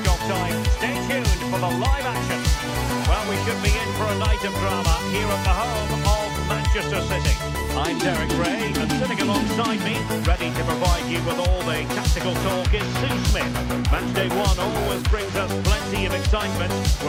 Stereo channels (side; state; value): both; identical; correlation 1.00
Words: time. Stay tuned for the live action. Well, we should be in for a night of drama here at the home of Manchester City. I'm Derek Ray and sitting alongside me, ready to provide you with all the tactical talk, is Sue Smith. Matchday 1 always brings us plenty of excitement.